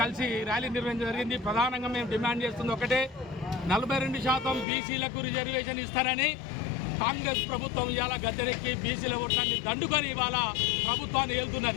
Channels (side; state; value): right; drops out; at 4.7 s